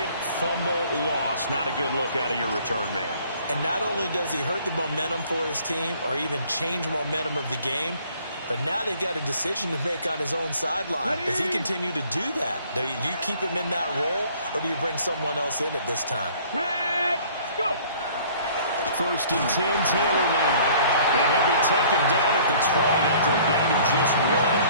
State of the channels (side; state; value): both; inverted; correlation -0.55